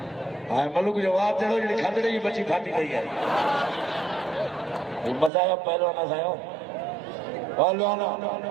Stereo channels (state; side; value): drops out; left; at 5.3 s